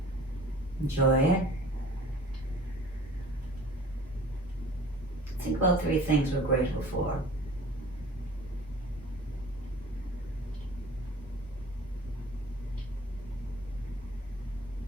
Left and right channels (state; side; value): normal; both; correlation 0.46